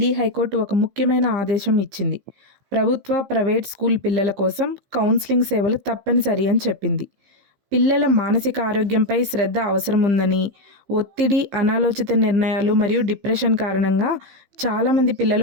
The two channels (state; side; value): late; left; 15 ms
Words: హైకోర్టు ఒక ముఖ్యమైన ఆదేశం ఇచ్చింది. ప్రభుత్వ, ప్రైవేట్ స్కూల్ పిల్లల కోసం కౌన్సిలింగ్ సేవలు తప్పనిసరి అని చెప్పింది. పిల్లల మానసిక ఆరోగ్యంపై శ్రద్ధ అవసరం ఉందని, ఒత్తిడి, అనాలోచిత నిర్ణయాలు మరియు డిప్రెషన్ కారణంగా చాలామంది